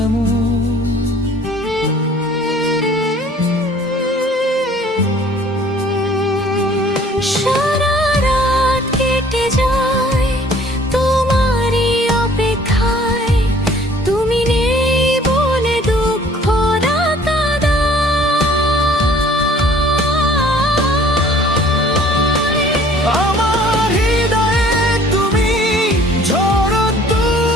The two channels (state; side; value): normal; both; correlation 0.54